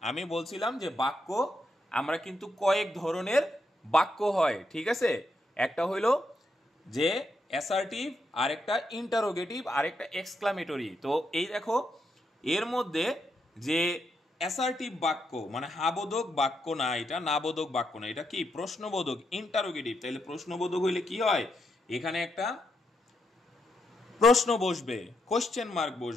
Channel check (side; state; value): both; normal; correlation 0.81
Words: আমি বলছিলাম যে বাক্য আমরা কিন্তু কয়েক ধরনের বাক্য হয়, ঠিক আছে, একটা হইলো যে অ্যাসার্টিভ, আরেকটা ইন্টারোগেটিভ, আরেকটা এক্সক্লামেটরি। তো এই দেখো এর মধ্যে যে অ্যাসার্টিভ বাক্য মানে হাবোধক বাক্য না, এটা নাবোধক বাক্য না, এটা কি প্রশ্নবোধক, ইন্টারোগেটিভ। তাহলে প্রশ্নবোধক হইলে কি হয়, এখানে একটা প্রশ্ন বসবে, কোশ্চেন মার্ক